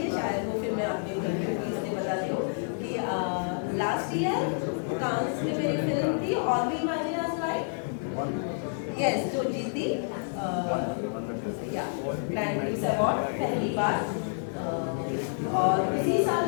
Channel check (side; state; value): right; silent; digital silence